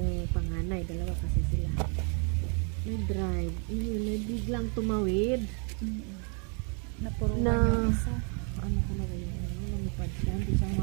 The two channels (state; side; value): quieter; left; 38.0 dB